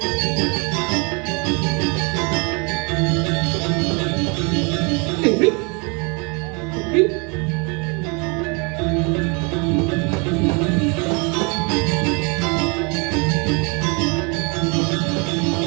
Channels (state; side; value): quieter; left; 32.1 dB